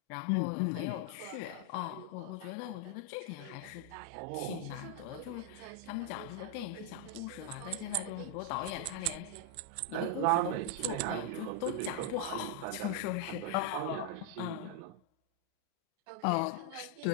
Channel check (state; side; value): different; both; correlation 0.00